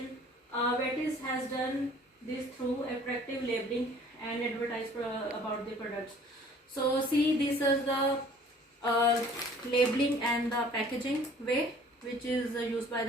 Betty's has done this through attractive labeling and advertise about the products. So see, this is the labeling and the packaging way, which is used by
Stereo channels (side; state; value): both; normal; correlation 0.52